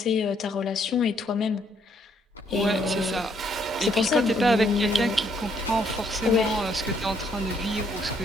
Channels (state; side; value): normal; both; correlation 0.70